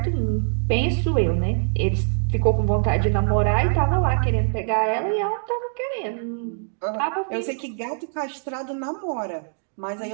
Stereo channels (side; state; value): left; silent; digital silence